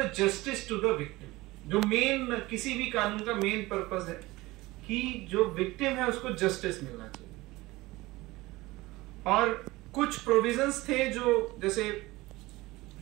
justice to the victim. जो मेन किसी भी कानून का मेन पर्पस है कि जो विक्टिम है उसको जस्टिस मिलना चाहिए। और कुछ प्रोविजंस थे जो जैसे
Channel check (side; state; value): left; quieter; 20.1 dB